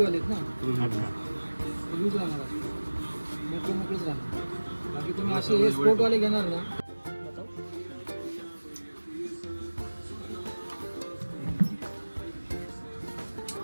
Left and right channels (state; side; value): inverted; both; correlation -1.00